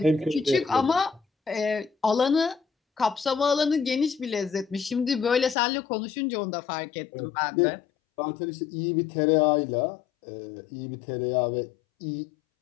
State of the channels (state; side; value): drops out; right; at 5.6 s